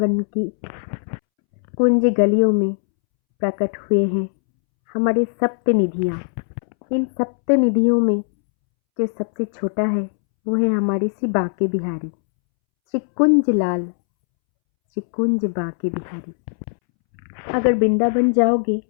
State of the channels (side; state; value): right; silent; 66 dB below the other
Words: की कुंज गलियों में प्रकट हुए हैं हमारे सप्त निधियाँ। इन सप्त निधियों में जो सबसे छोटा है वो है हमारे श्री बांके बिहारी, श्री कुंज लाल, श्री कुंज बांके बिहारी। अगर वृंदावन जाओगे